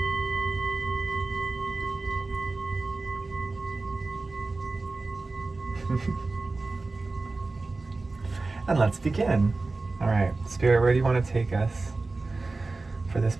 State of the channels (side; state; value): left; quieter; 3.5 dB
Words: And let's begin. All right, Spirit, where do you want to take us for this